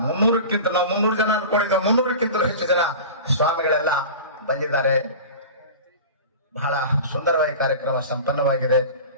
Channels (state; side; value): inverted; both; correlation -0.34